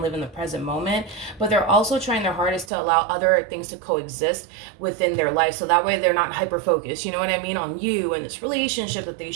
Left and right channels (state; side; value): drops out; left; at 2.7 s